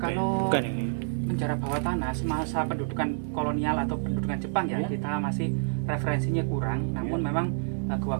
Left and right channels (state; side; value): silent; left; digital silence